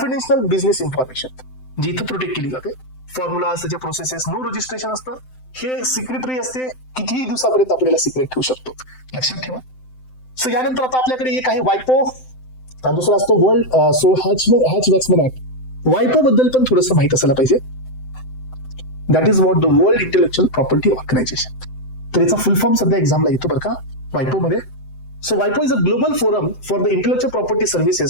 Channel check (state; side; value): late; right; 7.8 ms